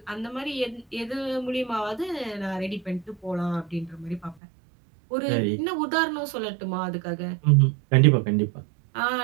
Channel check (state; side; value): drops out; left; at 4.4 s